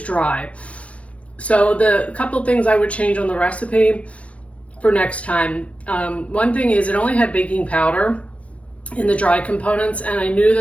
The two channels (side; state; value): right; late; 0.064 ms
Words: dry. So the couple things I would change on the recipe for next time. One thing is it only had baking powder in the dry components, and I knew